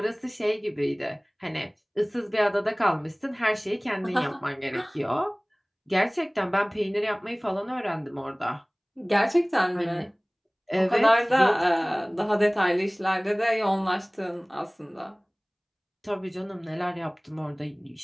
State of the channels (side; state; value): both; identical; correlation 1.00